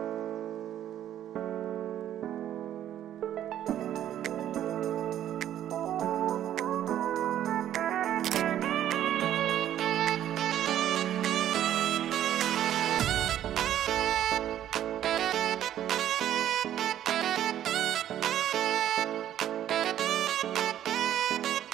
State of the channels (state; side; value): quieter; left; 11.4 dB